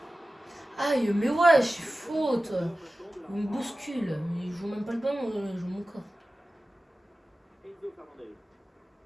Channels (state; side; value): normal; both; correlation 0.95